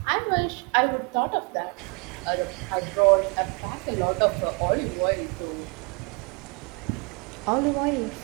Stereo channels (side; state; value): left; quieter; 32.8 dB